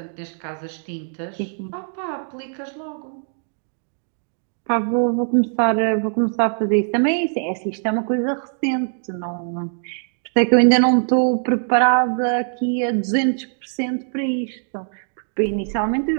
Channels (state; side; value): silent; left; digital silence